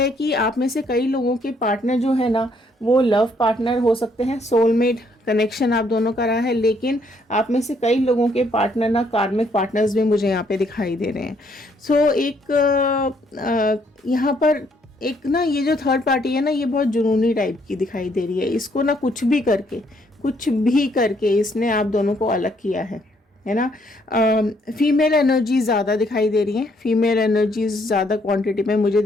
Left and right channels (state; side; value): normal; both; correlation 0.69